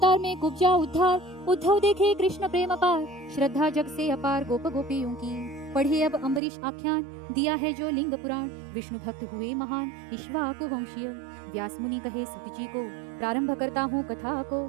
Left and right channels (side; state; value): left; drops out; at 6.4 s